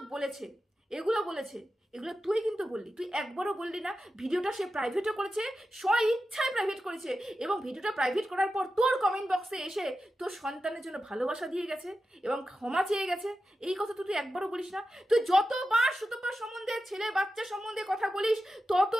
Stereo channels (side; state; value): both; normal; correlation 0.91